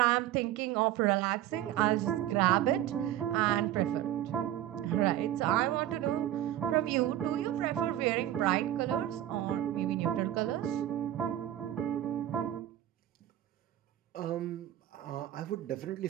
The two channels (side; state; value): left; quieter; 12.7 dB